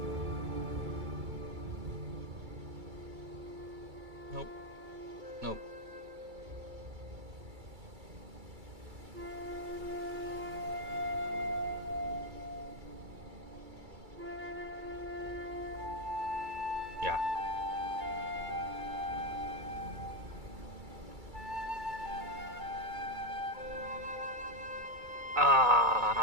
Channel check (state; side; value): late; left; 2.3 ms